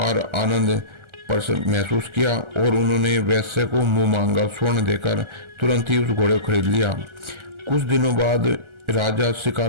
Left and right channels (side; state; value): left; late; 1.4 ms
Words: आनंद महसूस किया और उन्होंने वैश्य को मुंह मांगा स्वर्ण देकर तुरंत ही उस घोड़े को खरीद लिया। कुछ दिनों बाद राजा